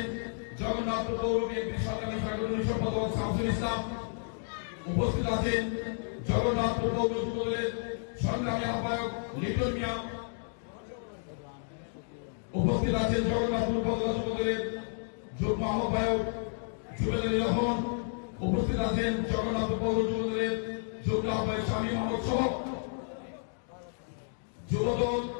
জগন্নাথপুর পৌর বিএনপির সংগ্রামী সাংগঠনিক সম্পাদক শামসুল ইসলাম। উপস্থিত আছেন জগন্নাথপুর পৌর যুবদলের সংগ্রামী আহ্বায়ক লিটন মিয়া। উপস্থিত আছেন জগন্নাথপুর উপজেলা যুবদলের যুগ্ম আহ্বায়ক জুবেল আলী রহমান। উপস্থিত আছেন জগন্নাথপুর পৌর যুবদলের যুগ্ম আহ্বায়ক স্বামী মোহাম্মদ সহ যুবদল,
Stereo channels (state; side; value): silent; right; digital silence